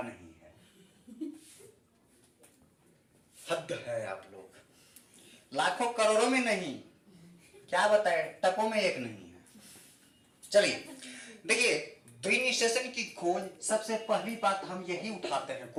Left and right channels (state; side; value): identical; both; correlation 1.00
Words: नहीं है, हद है आप लोग, लाखों करोड़ों में नहीं, क्या बताए, टकों में एक नहीं है। चलिए देखिए, द्विनिषेचन की खोज, सबसे पहली बात हम यही उठाते हैं।